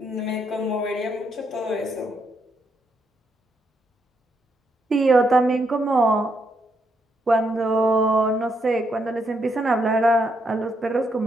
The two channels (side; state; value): both; normal; correlation 0.77